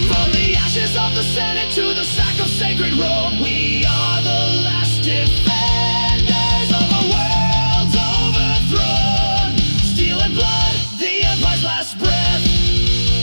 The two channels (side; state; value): both; inverted; correlation -1.00